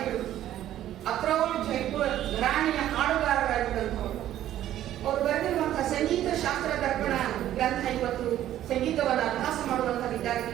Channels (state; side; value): quieter; left; 12.4 dB